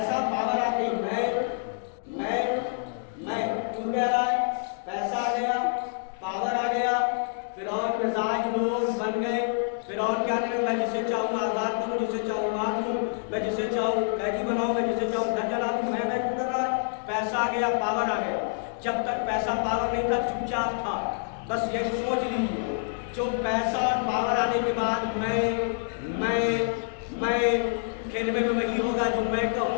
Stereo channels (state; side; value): silent; right; digital silence